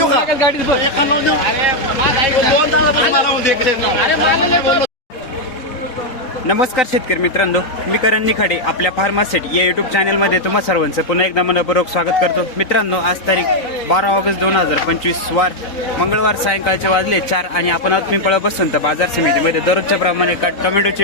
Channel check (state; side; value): late; right; 3.9 ms